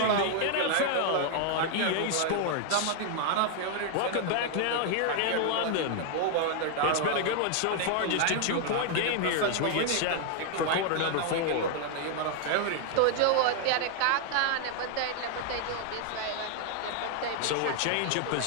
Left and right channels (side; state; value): both; different; correlation 0.00